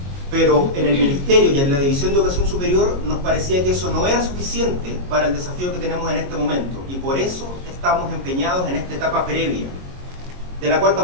Pero en el Ministerio y en la División de Educación Superior nos parecía que eso no era suficiente para el desafío que tenemos en este momento, y por eso estamos empeñados en esta etapa previa, de la cual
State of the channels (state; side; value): late; left; 22 ms